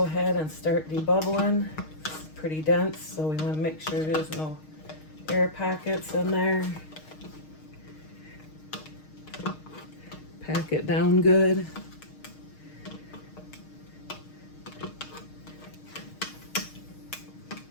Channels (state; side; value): late; right; 6.4 ms